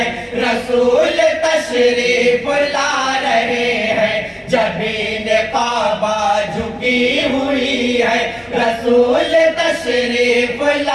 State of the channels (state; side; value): identical; both; correlation 1.00